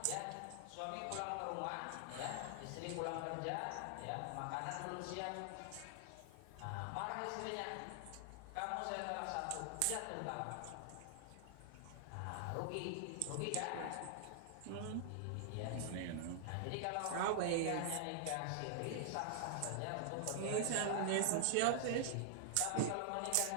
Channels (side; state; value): both; different; correlation -0.01